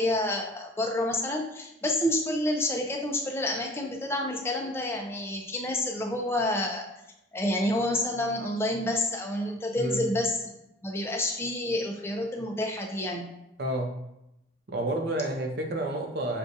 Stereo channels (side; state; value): both; normal; correlation 0.45